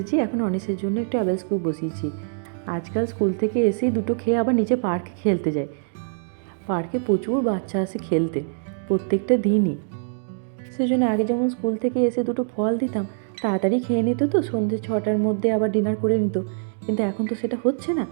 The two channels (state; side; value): silent; left; digital silence